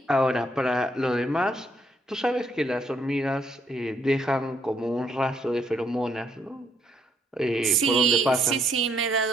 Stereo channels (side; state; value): both; normal; correlation 0.71